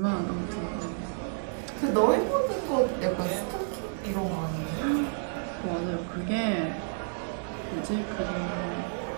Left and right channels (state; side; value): silent; left; digital silence